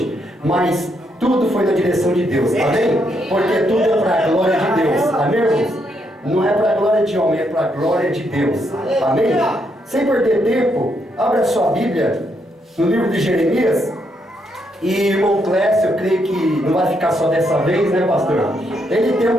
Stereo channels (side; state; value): both; normal; correlation 0.77